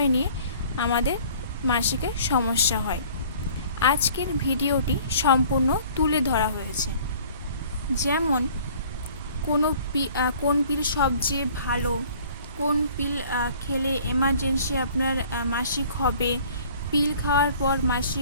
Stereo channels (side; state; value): both; inverted; correlation -0.52